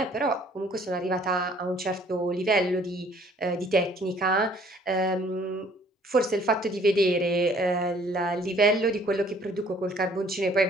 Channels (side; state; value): both; normal; correlation 0.58